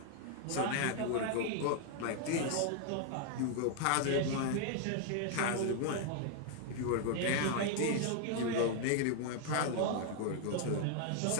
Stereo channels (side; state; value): both; different; correlation 0.00